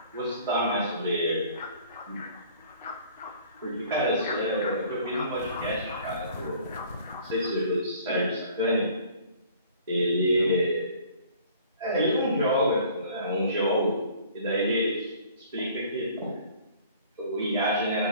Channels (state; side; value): inverted; both; correlation -0.52